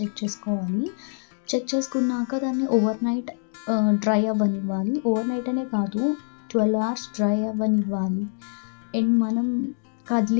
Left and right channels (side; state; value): right; silent; digital silence